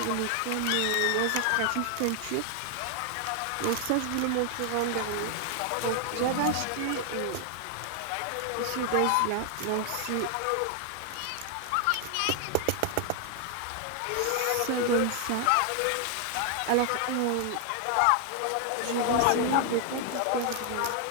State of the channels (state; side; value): different; both; correlation 0.00